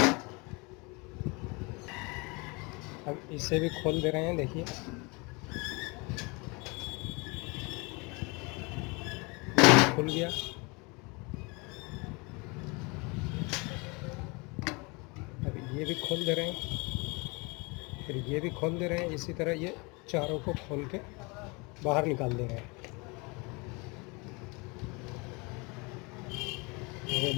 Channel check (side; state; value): right; quieter; 28.3 dB